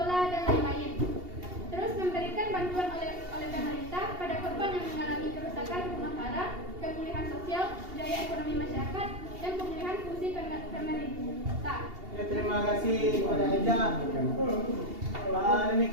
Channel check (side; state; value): left; late; 2.8 ms